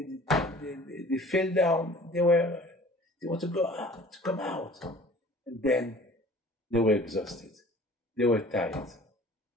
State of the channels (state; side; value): normal; both; correlation 0.48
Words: fell down. They want to go out, to come out, and then they were exhausted. They were tired.